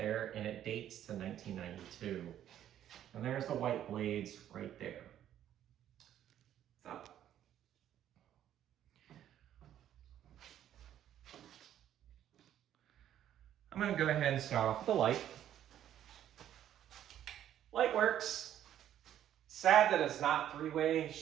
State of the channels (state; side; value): quieter; left; 11.1 dB